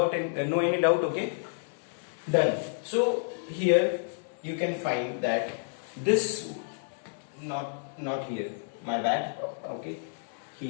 and no any doubt. Okay, done. So here you can find that this not here. My bad. Okay,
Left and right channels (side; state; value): right; silent; 58 dB below the other